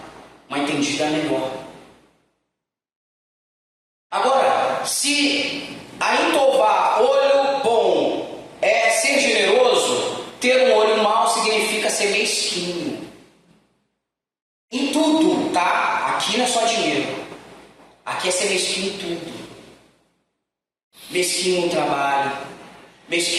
uma entendida melhor. Agora, se a intová, olho bom, é ser generoso, ter um olho mau significa ser mesquinho. Em tudo, tá? Aqui não é só dinheiro. Aqui é ser mesquinho em tudo. Mesquinho no trabalho.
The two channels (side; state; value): both; identical; correlation 1.00